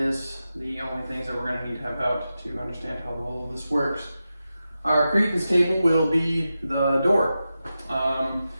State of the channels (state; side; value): inverted; both; correlation -0.92